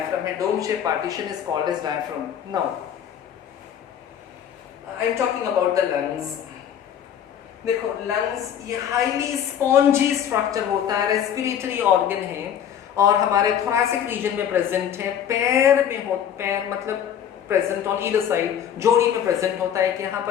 है, dome shape partition is called as diaphragm. Now I am talking about the lungs. देखो, लंग्स ये highly spongy structure होता है, respiratory organ है, और हमारे थोरैसिक रीजन में प्रेजेंट है। पैर में हो, पैर मतलब प्रेजेंट ऑन ईदर साइड, जोड़ी में प्रेजेंट होता है, कि यहाँ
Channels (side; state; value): right; quieter; 9.3 dB